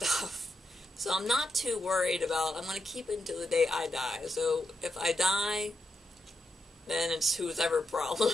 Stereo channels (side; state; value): both; normal; correlation 0.84